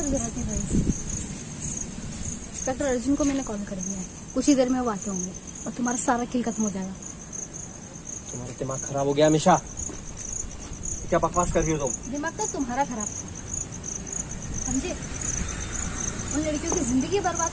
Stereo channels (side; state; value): both; identical; correlation 1.00